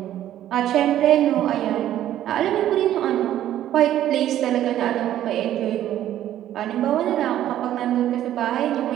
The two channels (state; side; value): quieter; left; 12.1 dB